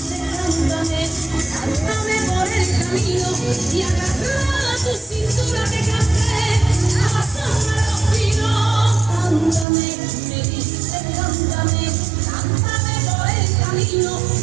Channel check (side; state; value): left; drops out; at 9.7 s